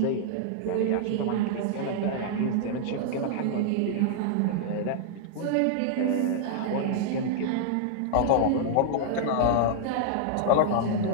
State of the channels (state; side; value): different; both; correlation -0.01